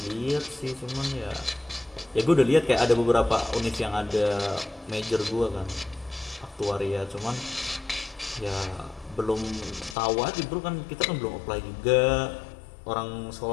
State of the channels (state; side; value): drops out; right; at 10.0 s